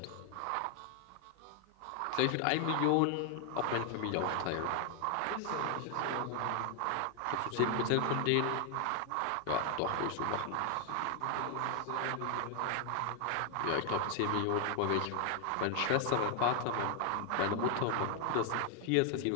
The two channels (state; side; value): different; both; correlation 0.00